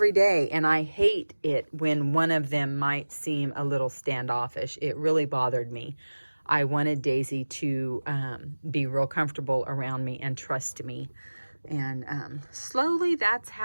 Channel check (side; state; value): both; inverted; correlation -1.00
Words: I hate it when one of them might seem a little standoffish. It really bothered me. I wanted Daisy to be real comfortable around me and trust me. And slowly that's